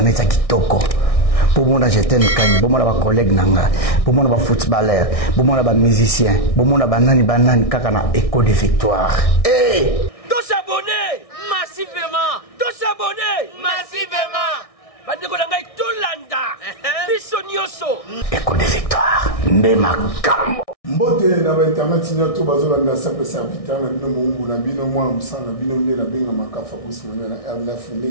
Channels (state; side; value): late; right; 1.6 ms